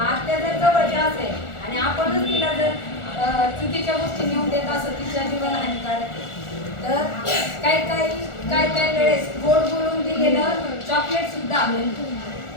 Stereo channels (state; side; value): late; right; 1.4 ms